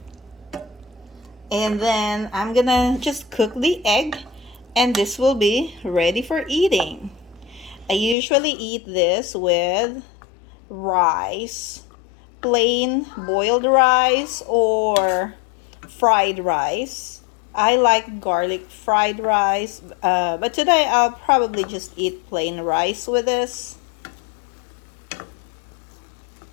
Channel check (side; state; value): right; drops out; at 8.2 s